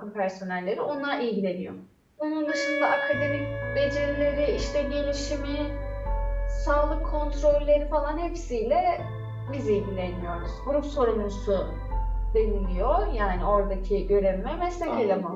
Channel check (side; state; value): both; identical; correlation 1.00